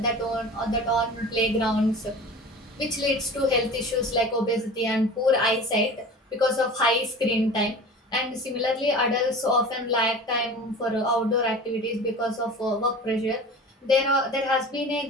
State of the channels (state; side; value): normal; both; correlation 0.37